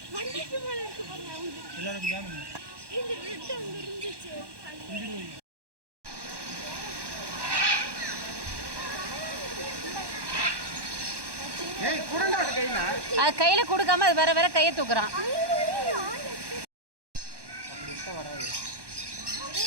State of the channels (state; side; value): late; left; 1.1 ms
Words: எல்லாரும் ஜாமீன் இந்த ரெட் அங்க இருந்துச்சு. ஏய் குடண்டா கையில அது கையில் கொடுக்காம அது வேற வேற கையை தூக்குறான். அப்படி இருந்தா வராது.